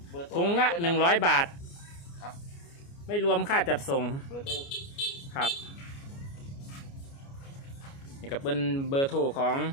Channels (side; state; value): right; late; 29 ms